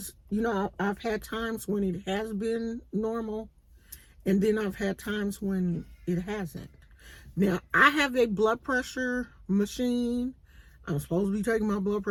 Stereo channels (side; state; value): both; identical; correlation 1.00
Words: I've had times when it has been normal. And then I've had times when it hasn't. Now I have a blood pressure machine. I'm supposed to be taking my blood